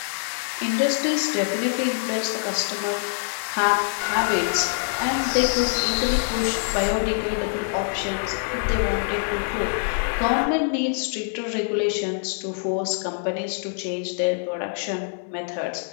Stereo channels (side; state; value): right; silent; digital silence